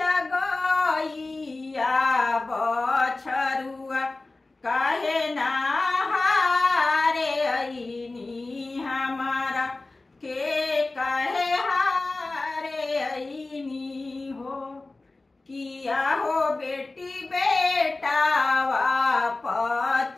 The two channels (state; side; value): quieter; right; 3.2 dB